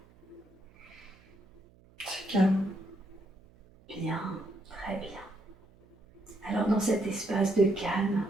C'est calme. Bien, très bien. Alors dans cet espace de calme,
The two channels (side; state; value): right; noise; hum, 27 dB below the sound